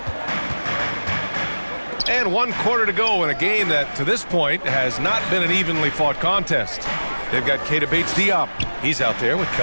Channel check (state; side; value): inverted; both; correlation -1.00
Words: And 1 quarter to go in a game that, to this point, has not been an evenly fought contest. They've got Keita Bates-Diop. He's out there with